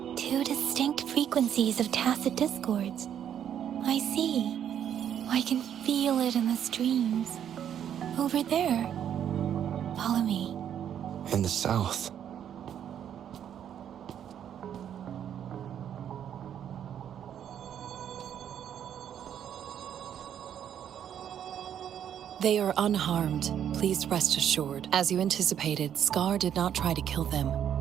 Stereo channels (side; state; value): left; quieter; 9.4 dB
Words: Two distinct frequencies of tacit discords. I see. I can feel it in the streams. Over there. Follow me. In the south. They are unharmed, please rest assured. As you anticipated, Scar did not try to kill them.